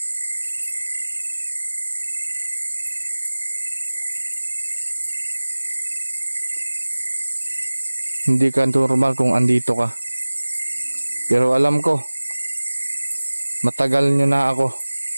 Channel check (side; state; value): both; inverted; correlation -1.00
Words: Hindi ka normal kung andito ka. Pero alam ko, matagal nyo na ako